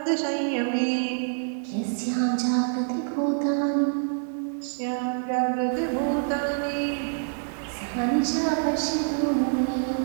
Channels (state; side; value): silent; left; digital silence